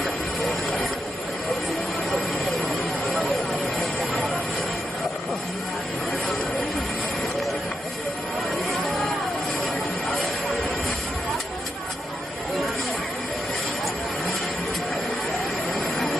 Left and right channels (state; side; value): normal; both; correlation 0.84